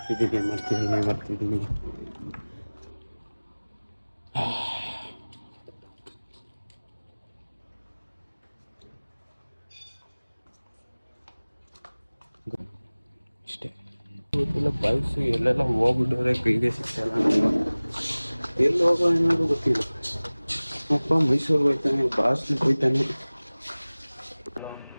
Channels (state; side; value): inverted; both; correlation -1.00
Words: ಅಷ್ಟೇ ಬೈಸು ಎಲ್ಲೆಲ್ಲ ಹೋಗ್ಬಿಟ್ಟವ್ರೆ, ಕೈಗೆ ಸಿಗ್ತಲ್ಲ. ಎಲ್ಲಿ ಹೋಗೋ ಏನಾದ್ರು ಗೊತ್ತಿಲ್ಲ. ಅಪ್ಪ ಮೈಸೂರಿಗೆ ಹೋಯ್ತಾನೆ, ಬಾಸ್ಗೆ ಹೋಯ್ತಾನೆ.